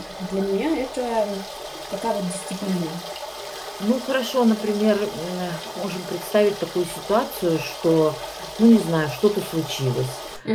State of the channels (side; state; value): both; identical; correlation 1.00